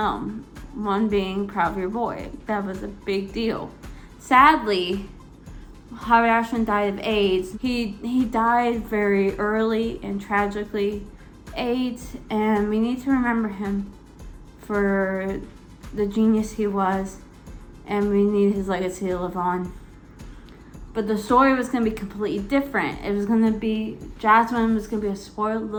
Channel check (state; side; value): identical; both; correlation 1.00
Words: One being Proud of Your Boy. That was a big deal. Sadly, Howard Ashman died of AIDS. He died very early and tragically AIDS, and we need to remember him for the genius he was, and we need his legacy to live on. But the story was going to be completely different. It was going to be, Jasmine was going to be a spoiled